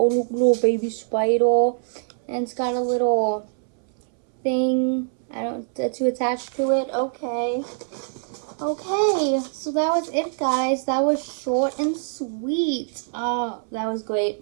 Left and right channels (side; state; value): left; silent; 63 dB below the other